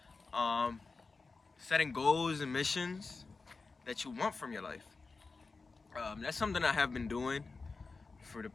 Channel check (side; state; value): right; quieter; 4.1 dB